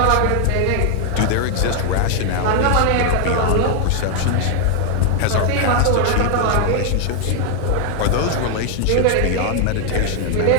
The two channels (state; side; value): different; both; correlation 0.00